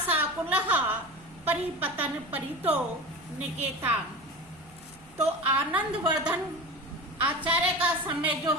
परिपतन परितो निकेताम। तो आनंदवर्धन आचार्य का समय जो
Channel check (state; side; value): noise; right; hum, 27 dB below the sound